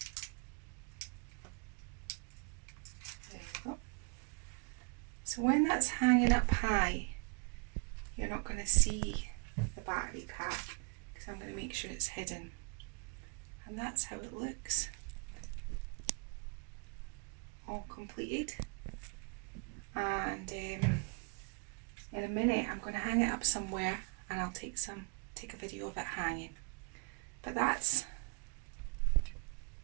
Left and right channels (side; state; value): left; quieter; 35.2 dB